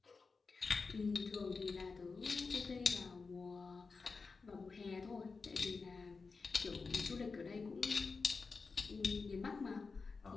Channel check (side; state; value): right; quieter; 4.5 dB